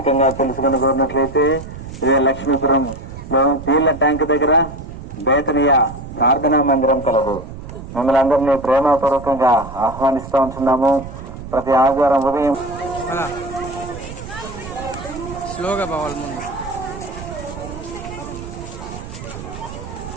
తెలుసుకుని కోరినట్లయితే లక్ష్మీపురంలో నీళ్ల ట్యాంక్ దగ్గర బేతనియా ప్రార్థనా మందిరం కలదు. మిమ్మల్ని అందరినీ ప్రేమపూర్వకంగా ఆహ్వానిస్తూ ఉంటున్నాము. ప్రతి ఆదివారం ఉదయం స్లోగా పోవాలి ముందు.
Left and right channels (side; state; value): right; noise; rumble, 12 dB below the sound